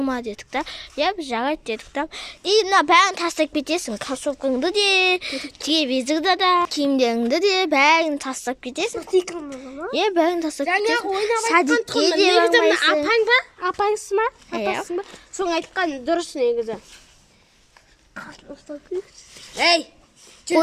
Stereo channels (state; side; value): identical; both; correlation 1.00